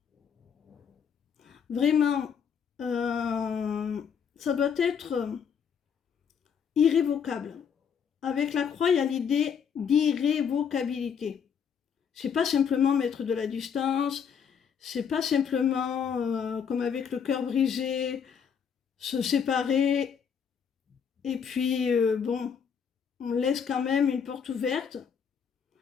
Vraiment, ça doit être irrévocable. Avec la croix, il y a l'idée d'irrévocabilité. C'est pas simplement mettre de la distance, c'est pas simplement, comme avec le cœur brisé, se séparer et puis, bon, on laisse quand même une porte ouverte.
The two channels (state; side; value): quieter; right; 7.1 dB